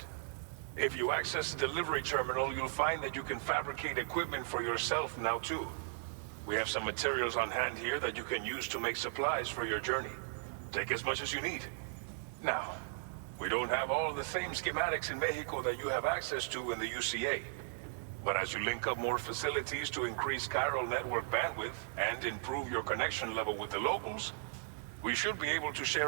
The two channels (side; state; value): left; silent; digital silence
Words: If you access the delivery terminal, you'll find that you can fabricate equipment for yourself now too. We have some materials on hand here that you can use to make supplies for your journey. Take as much as you need. Now, we don't have all the same schematics in Mexico that you have access to in the UCA. But as you link up more facilities to increase chiral network bandwidth and improve your connection level with the locals, we should be able to